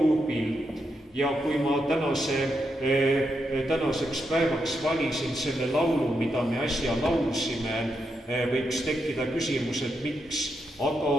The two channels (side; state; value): both; normal; correlation 0.83